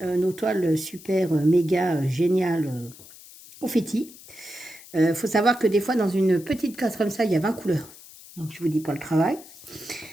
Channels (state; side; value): noise; left; hiss, 19 dB below the sound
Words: nos toiles super méga géniales confetti. Faut savoir que des fois dans une petite case comme ça, il y a 20 couleurs. Donc je vous dis pas le travail,